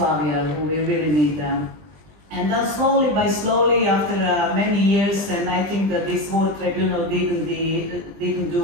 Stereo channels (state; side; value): late; left; 20 ms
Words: we really need and then slowly by slowly, after many years, and I think that this war tribunal didn't